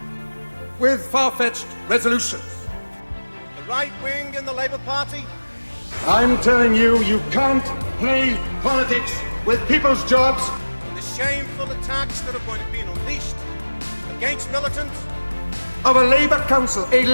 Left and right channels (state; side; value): inverted; both; correlation -1.00